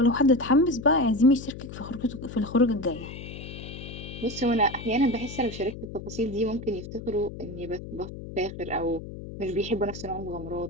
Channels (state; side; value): noise; left; hum, 11 dB below the sound